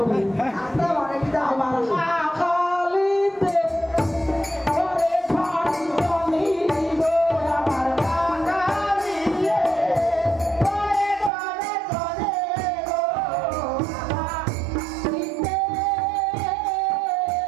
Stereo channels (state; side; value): drops out; left; at 11.3 s